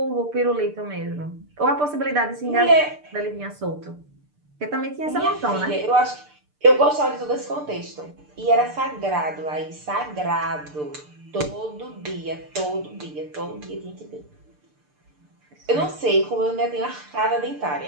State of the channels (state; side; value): late; left; 6.7 ms